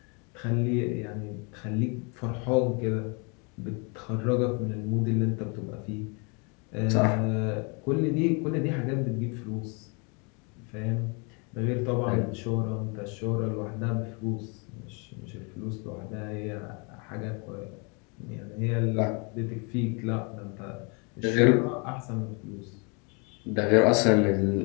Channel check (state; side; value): quieter; right; 33.4 dB